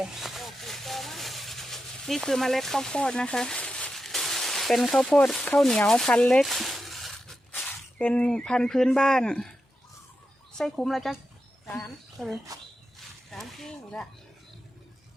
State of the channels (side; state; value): both; normal; correlation 0.89